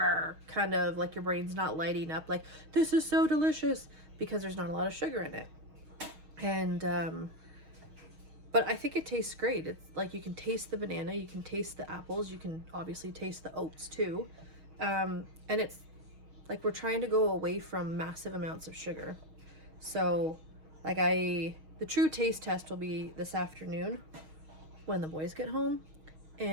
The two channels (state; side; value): late; left; 6.4 ms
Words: kind of like your brain's not lighting up like, this is so delicious, because there's not a lot of sugar in it. And but I think it tastes great. It's like you can taste the banana, you can taste the apples, you can obviously taste the oats too. And it's like we're trying to go away from massive amounts of sugar. So like the true taste test will be this afternoon when the boys get home,